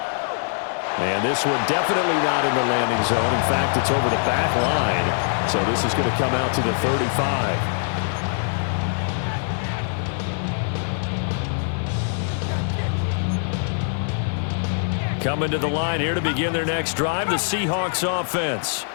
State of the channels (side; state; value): right; silent; 61 dB below the other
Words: And this one definitely not in the landing zone. In fact, it's over the back line. So this is going to come out to the 35. Coming to the line here to begin their next drive, the Seahawks offense.